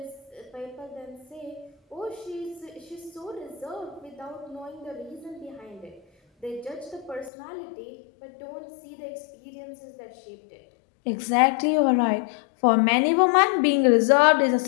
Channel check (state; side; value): drops out; right; at 7.3 s